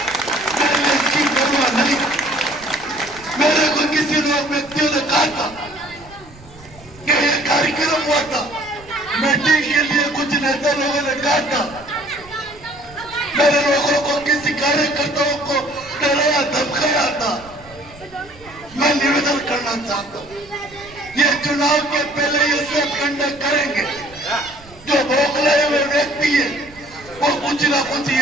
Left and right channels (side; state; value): right; noise; rumble, 22 dB below the sound